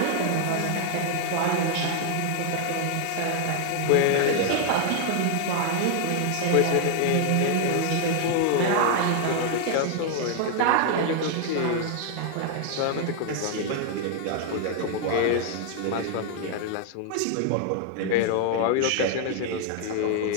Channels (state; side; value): different; both; correlation 0.00